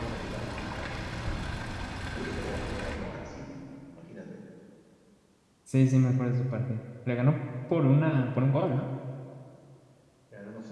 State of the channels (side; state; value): both; identical; correlation 1.00